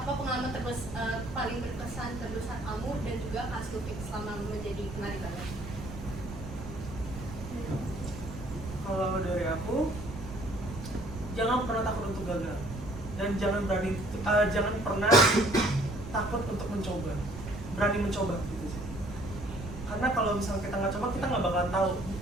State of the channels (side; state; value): right; noise; rumble, 11 dB below the sound